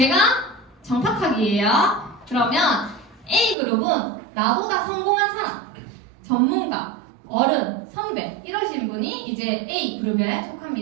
정탁하기예요. 그러면 A그룹은 나보다 성공한 사람, 전문가, 어른, 선배 이러신 분이 이제 A그룹에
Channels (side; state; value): left; drops out; at 3.6 s